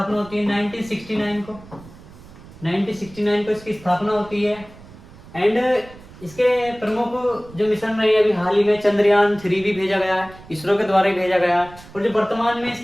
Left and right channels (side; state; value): right; noise; rumble, 20 dB below the sound